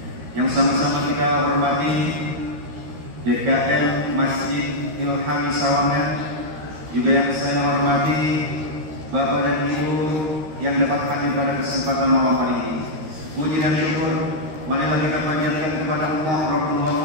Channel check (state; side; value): late; left; 13 ms